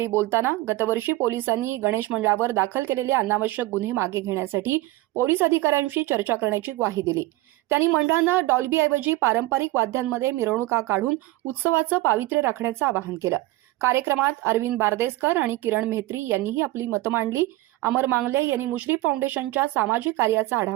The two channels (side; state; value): left; quieter; 18.3 dB